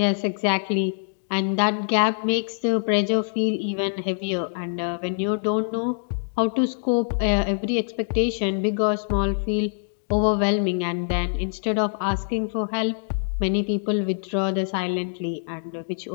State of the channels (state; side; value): silent; right; digital silence